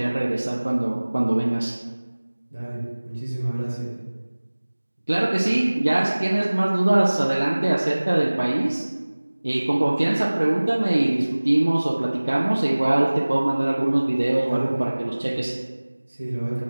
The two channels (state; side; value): inverted; both; correlation -1.00